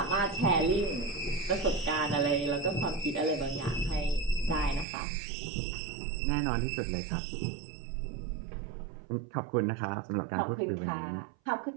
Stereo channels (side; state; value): left; drops out; at 4.9 s